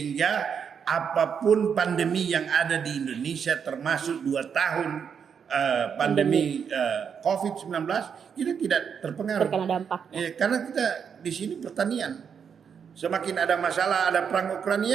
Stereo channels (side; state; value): left; quieter; 7.1 dB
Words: apapun pandemi yang ada di Indonesia, termasuk 2 tahun pandemi COVID-19, kita tidak terpengaruh. terkena dampak. Karena kita di sini pertanian. Semakin ada masalah, ada perang